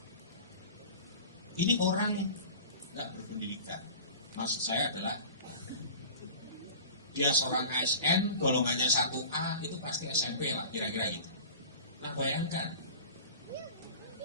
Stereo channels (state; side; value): inverted; both; correlation -0.38